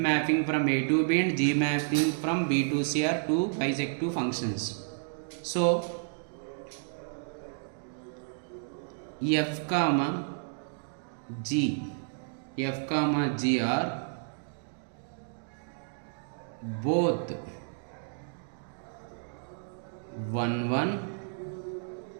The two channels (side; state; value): left; silent; digital silence